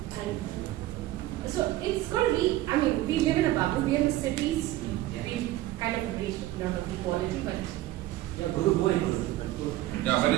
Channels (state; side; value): quieter; left; 15.9 dB